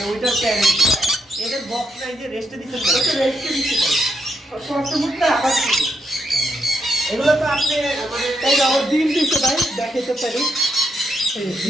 ওইটার প্যারেন্ট। এদের বক্স নাই যে রেস্টে দিচ্ছেন না? এটা রেস্টে দিতে পারে। কষ্টমুখটা আবার ছিল। এগুলো তো আপনি মানে তাই না, ওর ডিম দিতে ভাই, দেখাতে পারি। এই যে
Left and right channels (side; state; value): both; normal; correlation 0.80